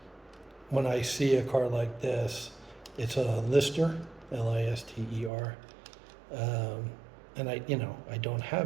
I see a car like this, it's a Lister, Lister, and I don't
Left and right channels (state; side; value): drops out; left; at 5.3 s